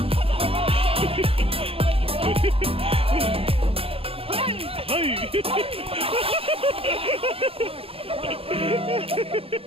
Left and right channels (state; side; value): late; left; 0.27 ms